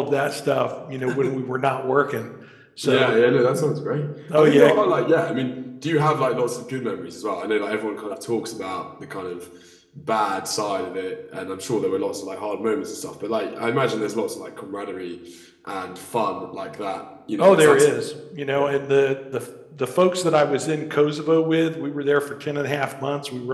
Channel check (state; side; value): identical; both; correlation 1.00